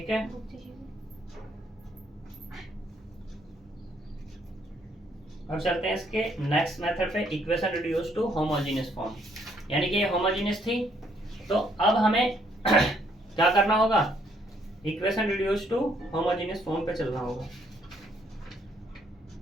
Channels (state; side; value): normal; both; correlation 0.68